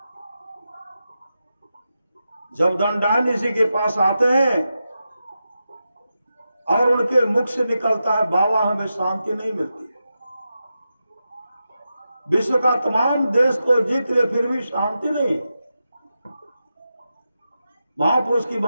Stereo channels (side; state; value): both; inverted; correlation -0.89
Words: जब दंडान ऋषि के पास आते हैं और उनके मुख से निकलता है, बाबा हमें शांति नहीं मिलती है। विश्व का तमाम देश को जीत ले फिर भी शांति नहीं। महापुरुष की